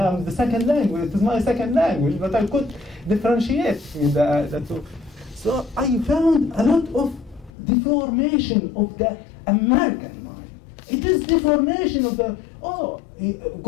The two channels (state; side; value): drops out; right; at 7.5 s